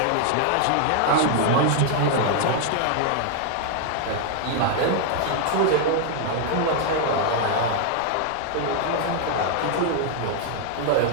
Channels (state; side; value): different; both; correlation -0.01